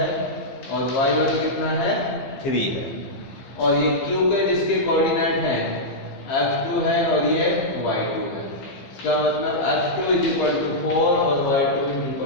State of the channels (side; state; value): right; late; 15 ms